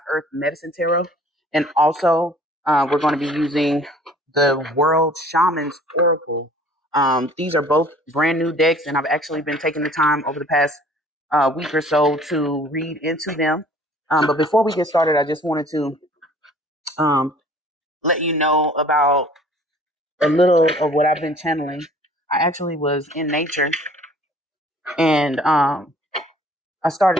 Earth Medicine Tarot, and also we're going to be using the World Shaman's Oracle. These are both brand new decks, and I've actually been taking the time over the past week or so to read into them. But before we get started, I just wanted to um, let you know about a little of what I've been channeling. I actually was in nature and I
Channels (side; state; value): both; normal; correlation 0.52